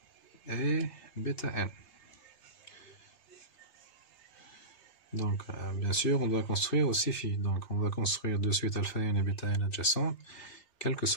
et bêta n. Donc, bien sûr, on doit construire aussi phi. Donc, on va construire de suite alpha n et bêta n adjacentes, quel que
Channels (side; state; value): right; late; 2.6 ms